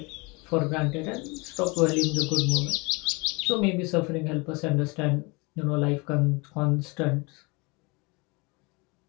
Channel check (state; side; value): quieter; right; 27.6 dB